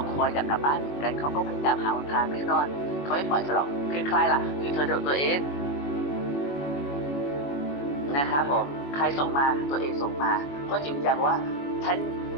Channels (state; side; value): late; right; 21 ms